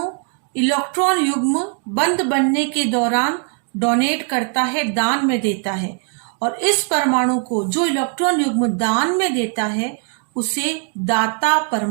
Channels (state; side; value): quieter; left; 39.5 dB